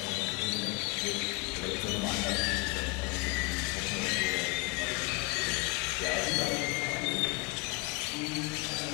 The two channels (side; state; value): right; quieter; 27.5 dB